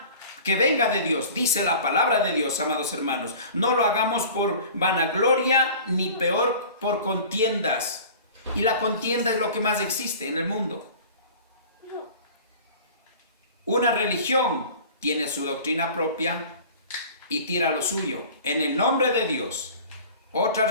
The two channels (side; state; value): both; inverted; correlation -0.42